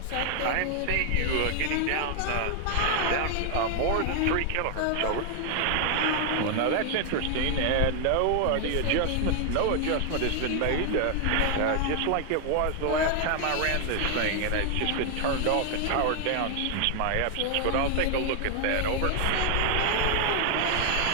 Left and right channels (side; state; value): both; different; correlation 0.00